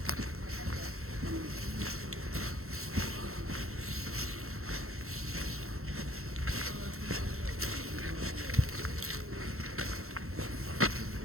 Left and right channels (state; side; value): late; left; 0.63 ms